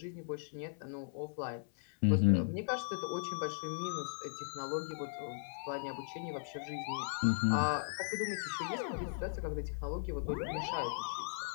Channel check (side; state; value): right; silent; 53 dB below the other